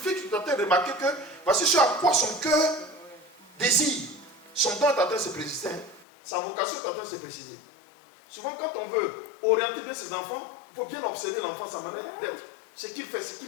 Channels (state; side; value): drops out; right; at 6.1 s